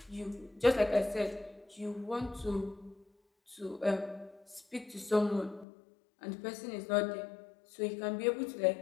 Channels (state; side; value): drops out; right; at 5.7 s